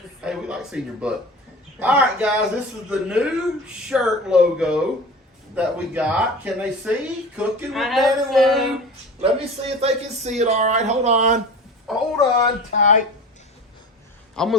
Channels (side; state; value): both; normal; correlation 0.35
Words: Hey, we like seeing your butt. All right, guys, this is the new shirt logo that we got. Can they see? Cooking with Dan and Lou. Let me see if they can see it. All right, hold on. Hold on tight. I'm